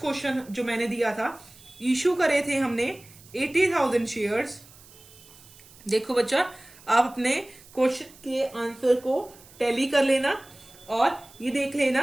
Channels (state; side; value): noise; right; hiss, 23 dB below the sound